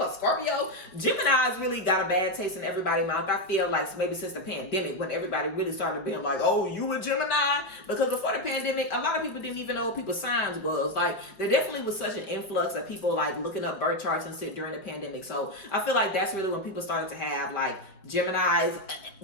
a Scorpio? Gemini's really got a bad taste in everybody's mouth. I feel like maybe since the pandemic, when everybody really started being like, oh, you a Gemini? Because before the pandemic, a lot of people didn't even know what people's signs was. Like, there definitely was such an influx of people like looking up birth charts and shit during the pandemic. So I feel like that's really when people started to have like Geminis.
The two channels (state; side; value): late; right; 4.8 ms